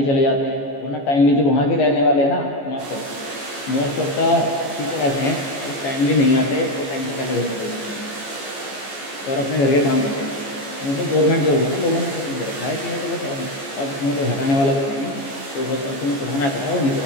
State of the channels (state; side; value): late; right; 14 ms